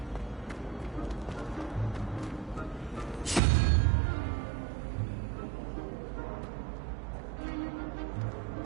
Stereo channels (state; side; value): drops out; left; at 3.4 s